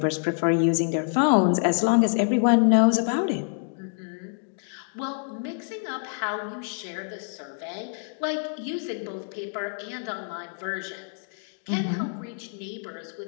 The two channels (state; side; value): silent; right; 60 dB below the other